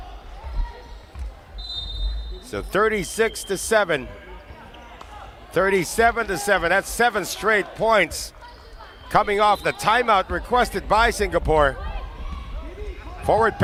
So 36-7. 37-7. That's 7 straight points coming off the timeout requested by Singapore. Forward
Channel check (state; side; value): identical; both; correlation 1.00